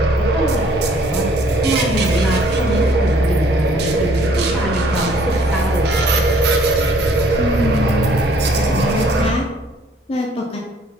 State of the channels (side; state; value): both; normal; correlation 0.60